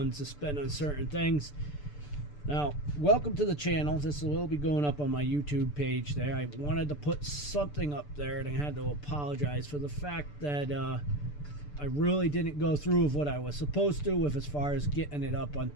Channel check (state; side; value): late; right; 6.8 ms